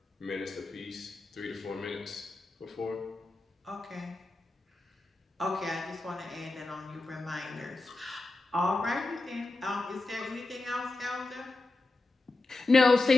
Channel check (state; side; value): quieter; right; 3.2 dB